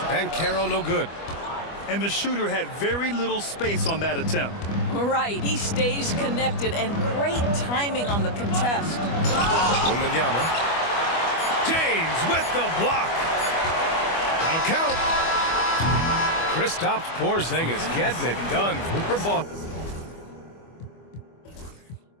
Banchero no good. And the shooter had very little space on that attempt. Right, he stays connected and great timing on the contest. Wembanyama. James with the block. That'll count. Kristaps Porzingis getting it done for Boston.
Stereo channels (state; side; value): late; right; 25 ms